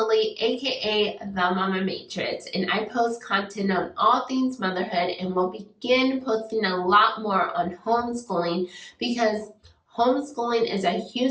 aka The Mama Matrix, and I post content on all things motherhood and will begin posting a lot more on homeschooling because homeschooling is a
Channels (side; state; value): both; identical; correlation 1.00